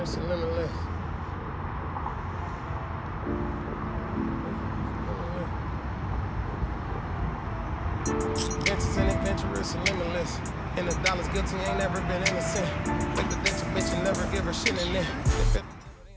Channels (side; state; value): both; identical; correlation 1.00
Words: adventurous and limitless. Adventures and adventurous and limitless. And the dollar's guilty, ain't never been innocent. Take the ditch, a bitch, and never give her shit in it.